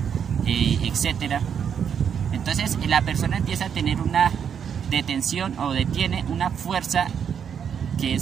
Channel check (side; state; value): left; quieter; 7.8 dB